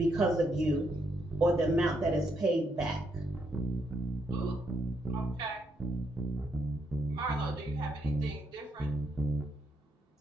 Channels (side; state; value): both; normal; correlation 0.77